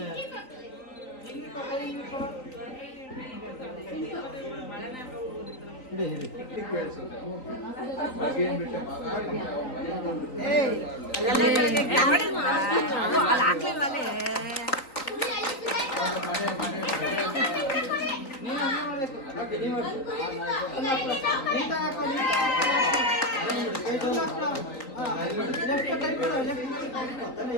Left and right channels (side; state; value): right; late; 3.9 ms